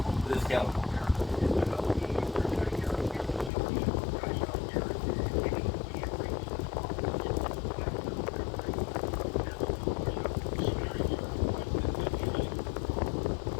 with the scale?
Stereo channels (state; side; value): drops out; right; at 3.5 s